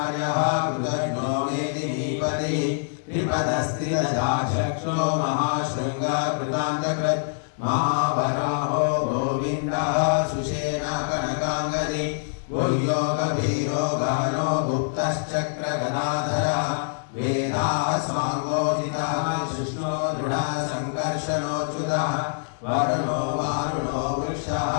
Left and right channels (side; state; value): right; silent; digital silence